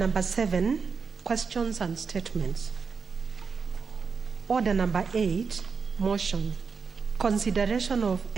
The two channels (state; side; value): quieter; left; 5.4 dB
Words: 7, questions and statements. Order number 8, motion. Consideration of